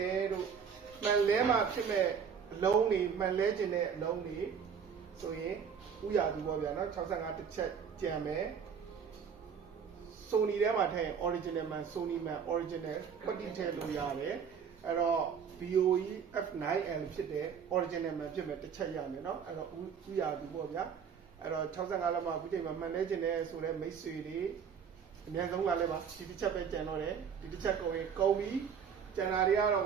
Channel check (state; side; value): quieter; left; 7.0 dB